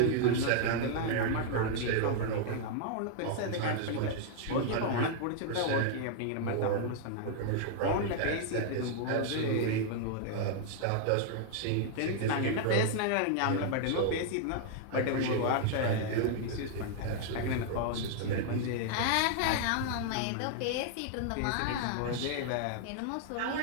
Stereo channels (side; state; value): both; different; correlation -0.01